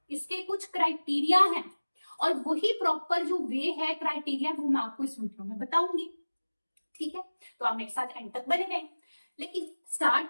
इसके कुछ क्राइटेरिया हैं, और वही प्रॉपर जो वे है क्राइटेरिया वो मैं आपको इस वीडियो में बताऊंगी। ठीक है, तो आप मेरे साथ एंड तक बने रहें। लेकिन स्टार्ट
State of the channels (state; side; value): inverted; both; correlation -1.00